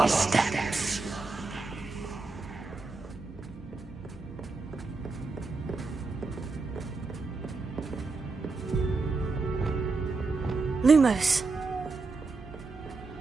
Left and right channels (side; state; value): left; quieter; 3.9 dB